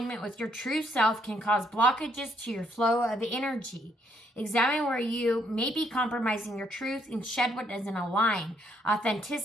with your true self can cause blockages to your flow of energy. Examine where you may be compromising your truth and shed what doesn't align.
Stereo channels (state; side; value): normal; both; correlation 0.71